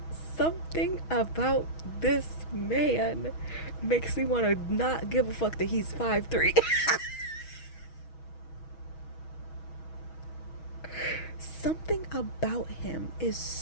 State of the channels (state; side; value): late; right; 6.2 ms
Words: Something about this man makes me want to not give a fuck that he's 5'3". Something about him is